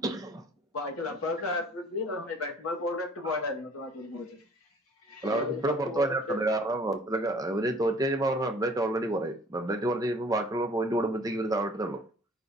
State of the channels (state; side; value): normal; both; correlation 0.52